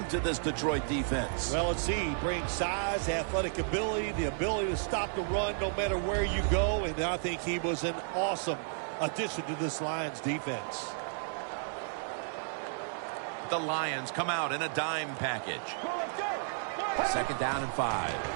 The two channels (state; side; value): silent; left; digital silence